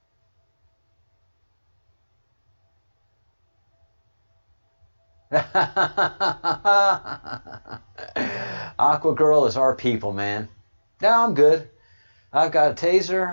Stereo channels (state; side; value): inverted; both; correlation -1.00